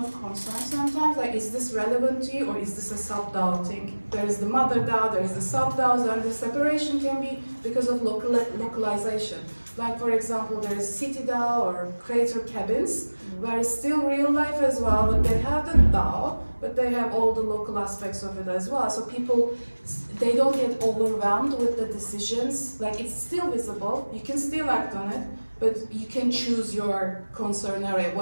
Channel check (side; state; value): both; inverted; correlation -1.00